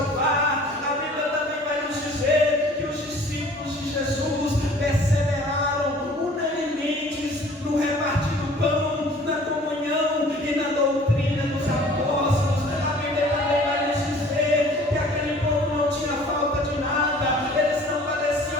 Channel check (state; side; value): normal; both; correlation 0.50